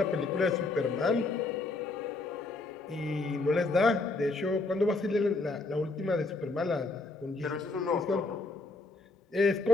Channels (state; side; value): quieter; right; 3.5 dB